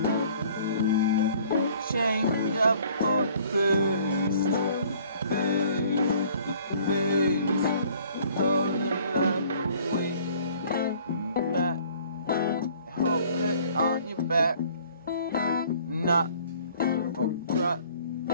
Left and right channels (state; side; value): inverted; both; correlation -0.55